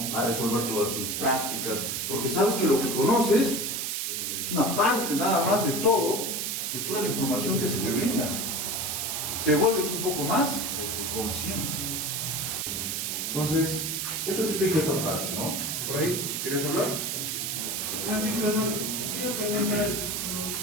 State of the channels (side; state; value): right; noise; hiss, 1 dB below the sound